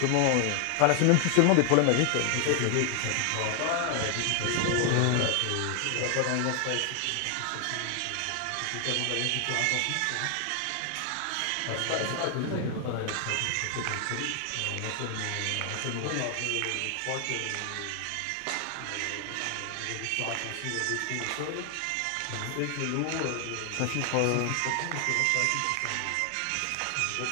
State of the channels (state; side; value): different; both; correlation 0.00